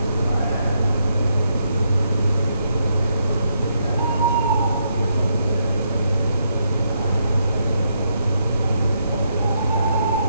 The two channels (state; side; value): inverted; both; correlation -0.78